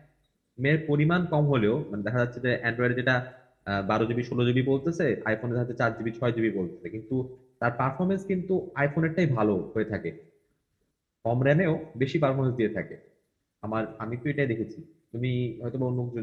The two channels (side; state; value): both; identical; correlation 1.00